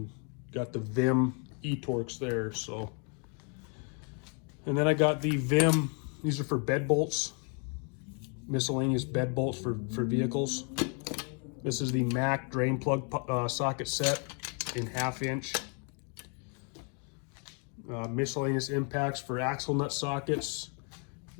got the Vim e-Torx there. So, and then I got the Vim. These are for bed bolts, miscellaneous bed bolts for vehicles. This is the Mac drain plug socket set in 1/2 inch. Miscellaneous impacts for axle nut sockets.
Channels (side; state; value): right; quieter; 38.6 dB